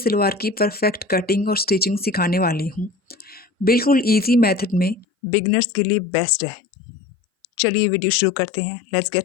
की परफेक्ट कटिंग और स्टिचिंग सिखाने वाली हूँ। बिल्कुल इजी मेथड में बिगनर्स के लिए बेस्ट है। चलिए वीडियो शुरू करते हैं। Let's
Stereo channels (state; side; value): drops out; right; at 5.1 s